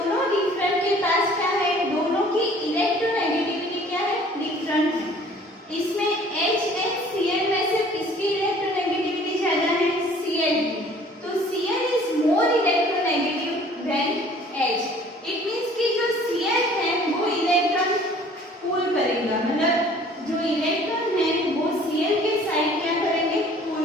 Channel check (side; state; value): both; normal; correlation 0.53